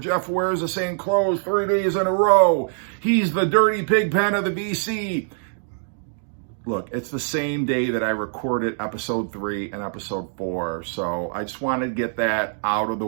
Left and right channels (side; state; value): left; silent; digital silence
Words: wears the same clothes 3 days in a row. He's the dirty pig pen of the BC. Look, it's the same day that I recorded episode 3 and episode 4. So I just wanted to get that out of the